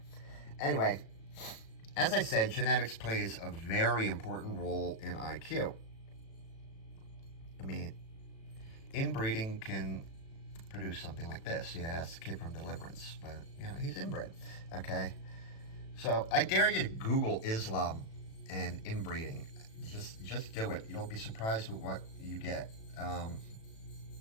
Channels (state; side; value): late; right; 36 ms